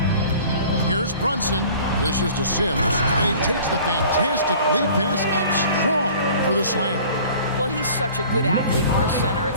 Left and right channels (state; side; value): inverted; both; correlation -0.47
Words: Here's Brunson. Dishes to Sims, and he takes the fantastic lead pass up strong for the slam. Well, he's such a good athlete for a center.